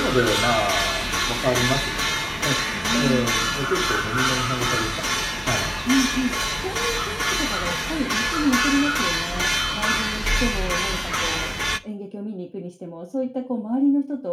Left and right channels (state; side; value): identical; both; correlation 1.00